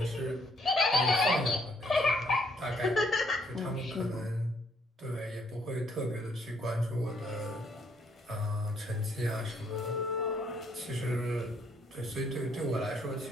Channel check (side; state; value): both; normal; correlation 0.68